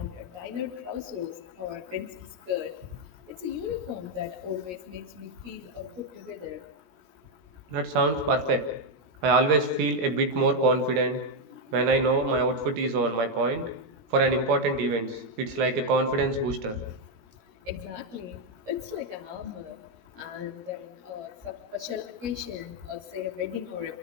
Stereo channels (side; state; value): left; late; 17 ms